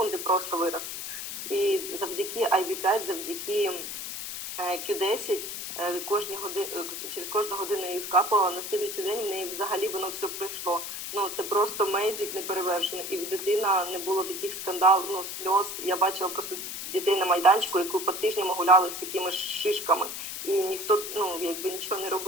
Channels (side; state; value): left; noise; hiss, 6 dB below the sound